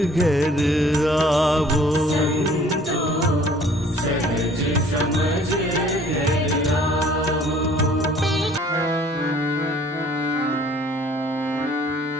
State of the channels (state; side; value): normal; both; correlation 0.55